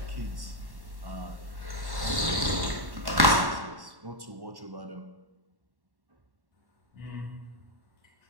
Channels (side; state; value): left; late; 1.1 ms